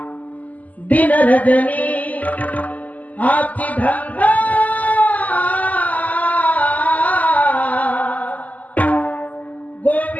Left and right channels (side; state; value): right; late; 0.077 ms